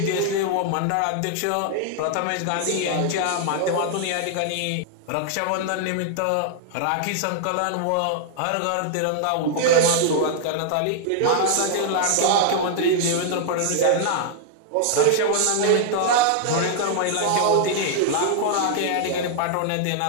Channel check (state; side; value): different; both; correlation -0.01